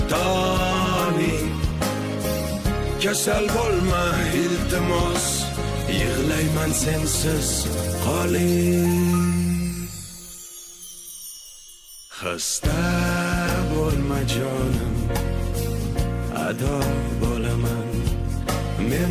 toni. Kasal bo'lma iltimos, yig'layman sensiz qoling. Xasta bo'lma jonim, ado bo'laman.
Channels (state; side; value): identical; both; correlation 1.00